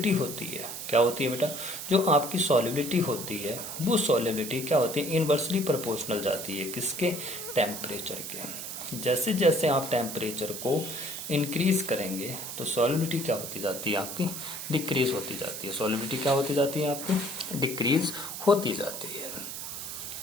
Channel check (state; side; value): noise; right; hiss, 7 dB below the sound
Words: होती है क्या होती है बेटा, जो आपकी सॉल्युबिलिटी होती है वो सॉल्युबिलिटी क्या होती है, इनवर्सली प्रोपोर्शनल जाती है किसके, टेम्परेचर के। जैसे जैसे आप टेम्परेचर को इंक्रीज करेंगे तो सॉल्युबिलिटी क्या होती जाती है आपकी, डिक्रीज होती जाती है। सॉल्युबिलिटी क्या होती जाती है आपकी, डिक्रीज होती जाती है।